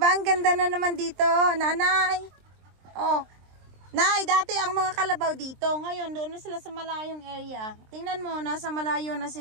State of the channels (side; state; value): left; late; 23 ms